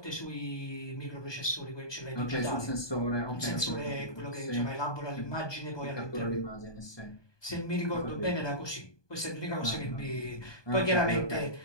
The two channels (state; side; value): late; right; 1.2 ms